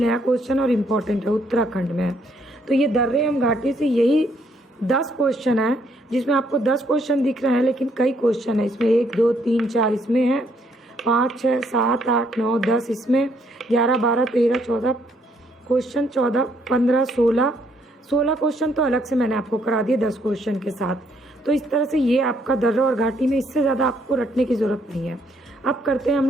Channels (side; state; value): both; normal; correlation 0.70